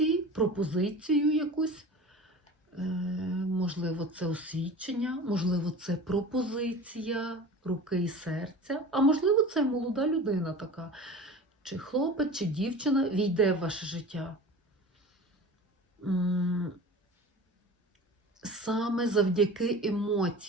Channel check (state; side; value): normal; both; correlation 0.37